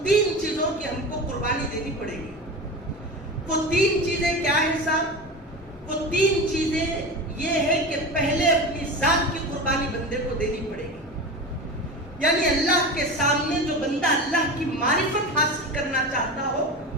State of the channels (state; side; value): normal; both; correlation 0.27